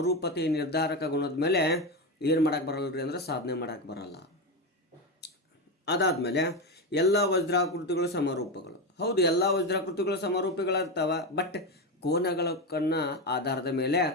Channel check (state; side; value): normal; both; correlation 0.14